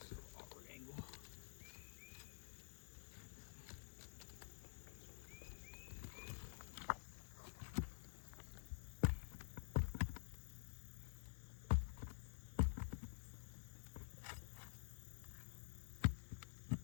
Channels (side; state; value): right; silent; digital silence